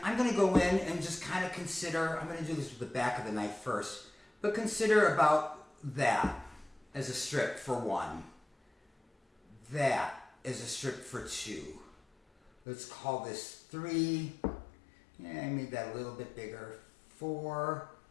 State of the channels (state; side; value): drops out; right; at 12.5 s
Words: I'm going to go in and just kind of consider, I'm going to do this with the back of the knife first, but consider about that as a strip for 1. That is a strip for 2. Let's call this 3. Yeah, I made that a little bit bigger. 4,